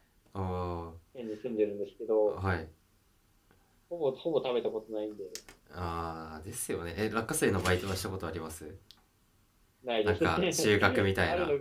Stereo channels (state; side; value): identical; both; correlation 1.00